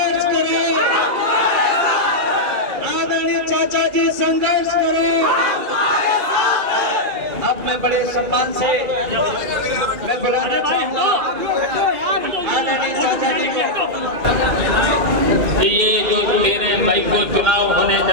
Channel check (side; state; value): left; late; 1.6 ms